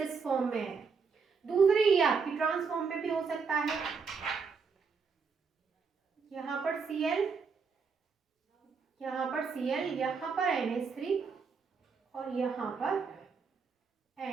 फॉर्म में है। दूसरी ये आपकी ट्रांस फॉर्म में भी हो सकता है, यहाँ पर Cl, यहाँ पर Cl, यहाँ पर NH3 और यहाँ पर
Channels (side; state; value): left; quieter; 5.3 dB